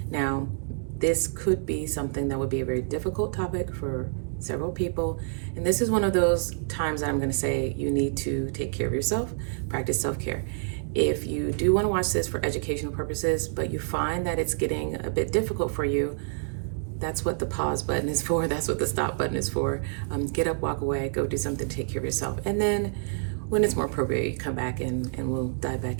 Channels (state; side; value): silent; left; digital silence